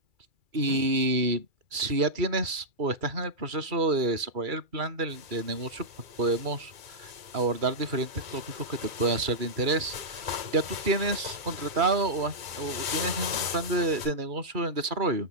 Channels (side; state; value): left; late; 2.3 ms